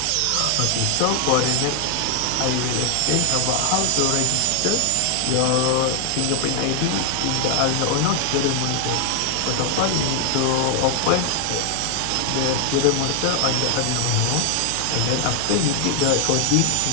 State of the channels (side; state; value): both; different; correlation 0.00